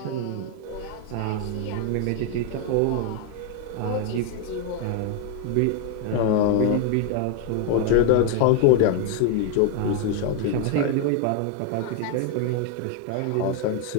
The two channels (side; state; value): both; different; correlation 0.00